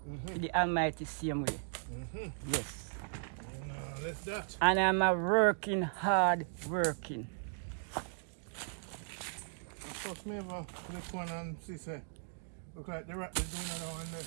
To the Almighty same way. Yes. Left that. And I'm a working, hard working. Trust me, man. Click one and see, say, look like the rat is doing it on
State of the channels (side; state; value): left; silent; digital silence